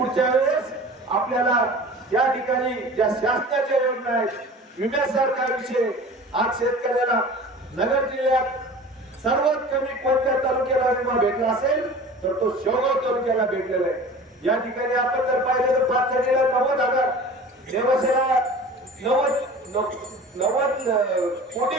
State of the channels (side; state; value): both; normal; correlation 0.40